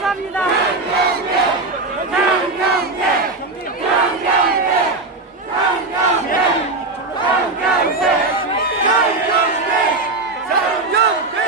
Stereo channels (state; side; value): quieter; left; 3.3 dB